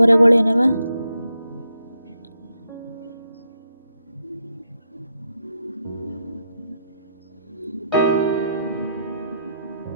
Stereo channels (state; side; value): inverted; both; correlation -0.80